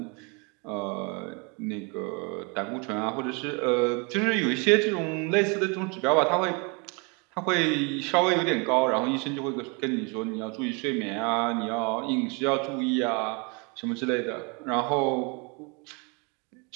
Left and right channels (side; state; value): left; quieter; 32.0 dB